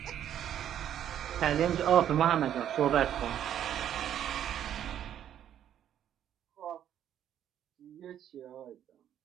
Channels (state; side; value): quieter; left; 10.3 dB